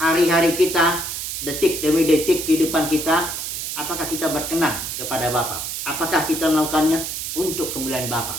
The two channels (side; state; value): right; noise; hiss, 5 dB below the sound